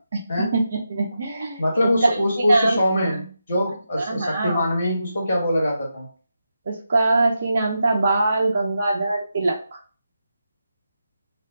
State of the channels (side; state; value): both; inverted; correlation -0.87